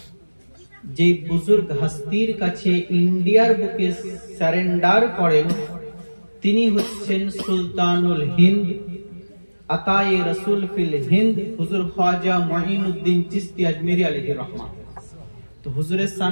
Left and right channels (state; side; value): inverted; both; correlation -1.00